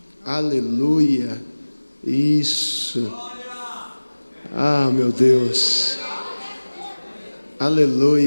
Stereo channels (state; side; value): inverted; both; correlation -1.00